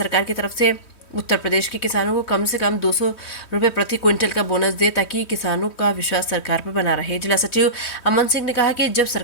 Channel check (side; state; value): right; late; 3.1 ms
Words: की तरफ से उत्तर प्रदेश के किसानों को कम से कम 200 रुपए प्रति क्विंटल का बोनस दे, ताकि किसानों का विश्वास सरकार पर बना रहे। जिला सचिव अमन सिंह ने कहा कि जब